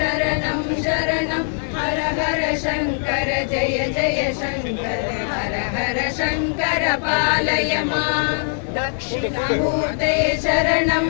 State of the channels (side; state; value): right; silent; digital silence